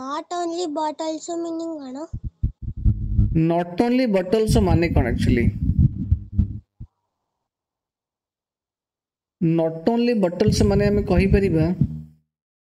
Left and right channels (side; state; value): both; identical; correlation 1.00